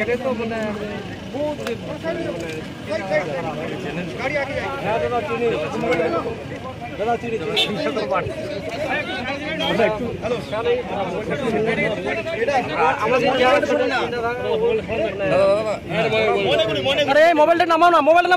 তো মানে মোবাইলটা নামাও না, মোবাইলটা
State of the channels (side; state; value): both; identical; correlation 1.00